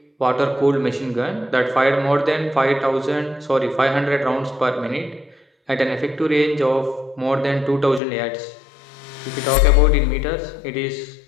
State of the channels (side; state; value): right; drops out; at 8.0 s